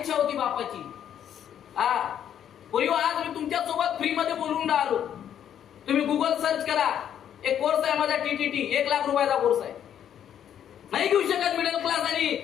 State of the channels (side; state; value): right; quieter; 9.7 dB